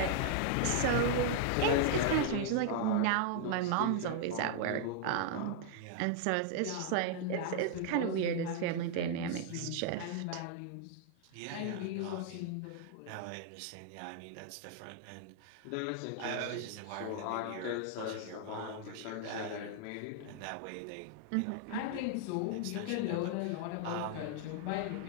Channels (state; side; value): different; both; correlation 0.00